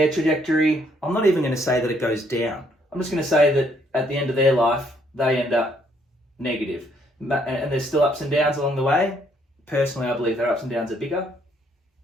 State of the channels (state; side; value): normal; both; correlation 0.68